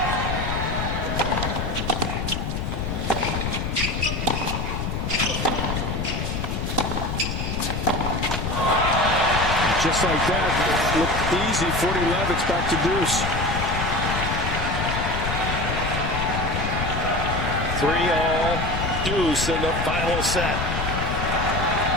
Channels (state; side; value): noise; left; rumble, 2 dB below the sound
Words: And just like that, looked easy. 40-11, it's back to deuce. 3-all, deuce in the final set.